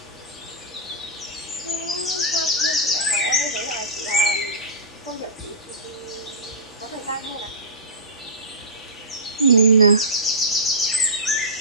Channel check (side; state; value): both; normal; correlation -0.19